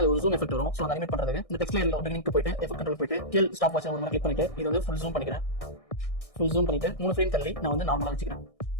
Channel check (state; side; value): late; right; 1.6 ms